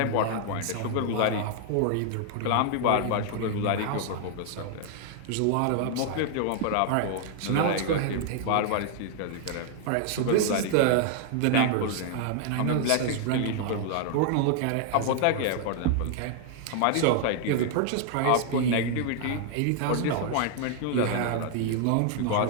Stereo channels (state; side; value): different; both; correlation 0.00